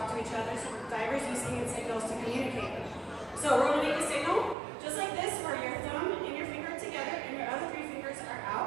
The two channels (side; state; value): left; drops out; at 4.5 s